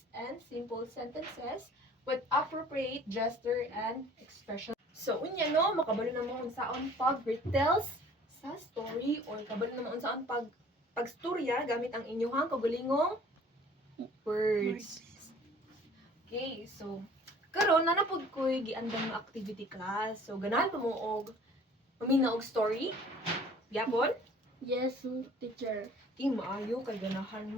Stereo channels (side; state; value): both; normal; correlation 0.51